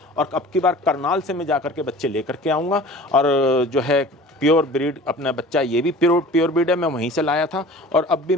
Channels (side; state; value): both; normal; correlation 0.43